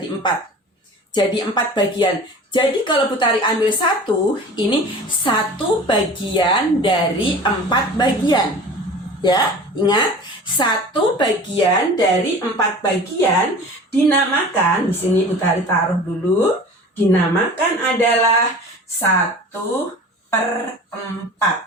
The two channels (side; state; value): both; normal; correlation 0.40